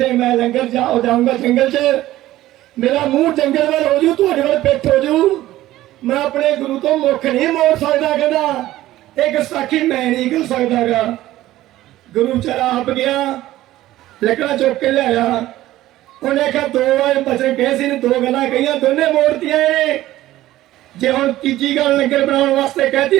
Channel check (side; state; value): left; quieter; 15.3 dB